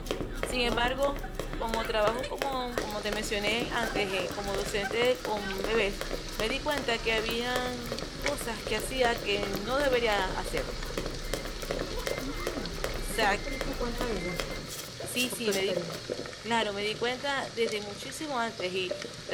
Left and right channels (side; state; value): both; identical; correlation 1.00